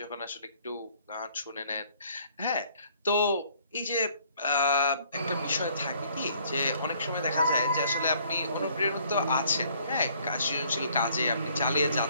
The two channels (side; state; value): both; inverted; correlation -0.61